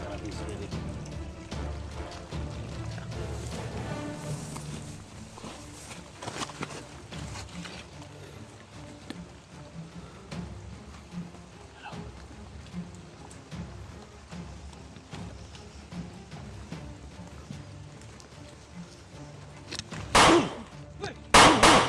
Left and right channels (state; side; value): identical; both; correlation 1.00